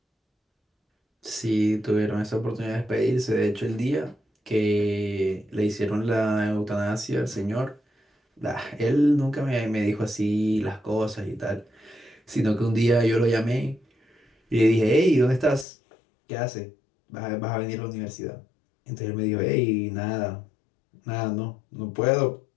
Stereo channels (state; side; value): drops out; right; at 15.7 s